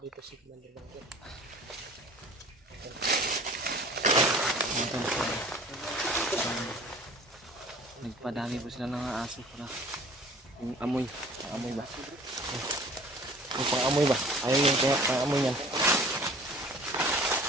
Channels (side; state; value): both; normal; correlation 0.48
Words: si Commander Bangkil. Nagpadami po sila ng mga aso para yung amoy. Amoy ba? Yung pang-amoy ba? Ayaw yung pang-amoy yan.